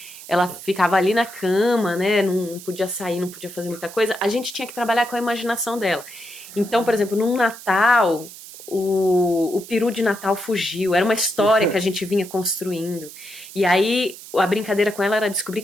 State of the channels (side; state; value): right; noise; hiss, 16 dB below the sound